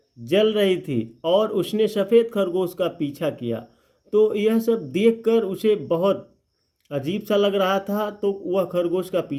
जल रही थी और उसने सफ़ेद खरगोश का पीछा किया। तो यह सब देखकर उसे बहुत अजीब सा लग रहा था, तो वह खरगोश का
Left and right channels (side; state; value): both; identical; correlation 1.00